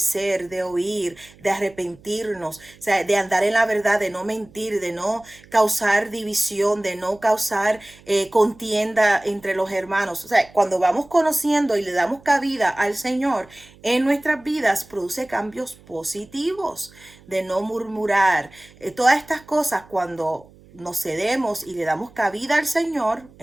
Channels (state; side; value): noise; right; hum, 25 dB below the sound